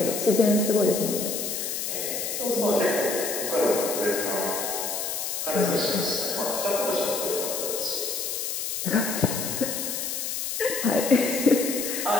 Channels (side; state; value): left; noise; hiss, 3 dB below the sound